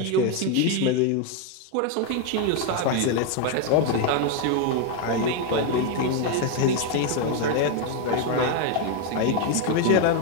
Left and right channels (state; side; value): different; both; correlation 0.02